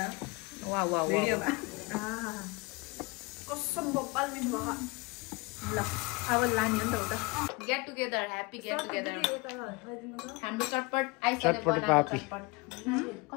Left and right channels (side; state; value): right; quieter; 26.2 dB